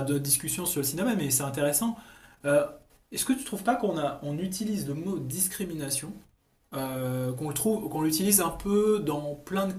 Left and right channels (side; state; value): both; identical; correlation 1.00